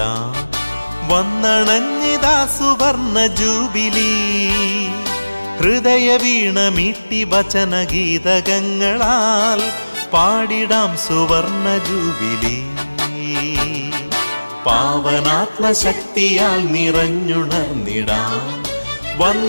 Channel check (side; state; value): both; inverted; correlation -1.00